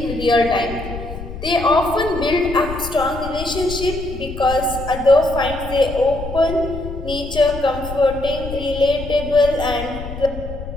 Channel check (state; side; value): noise; left; rumble, 9 dB below the sound